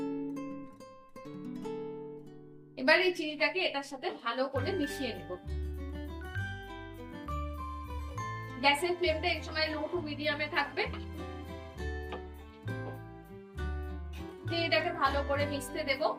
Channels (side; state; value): both; identical; correlation 1.00